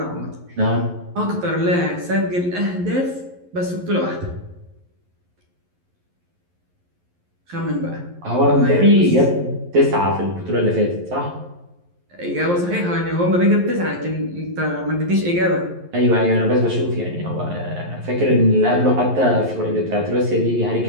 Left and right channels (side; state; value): left; late; 11 ms